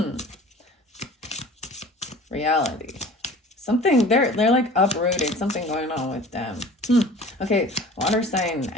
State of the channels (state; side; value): normal; both; correlation 0.43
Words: Reality. Something, they're like uprooted. Something going on with them. Okay, water sign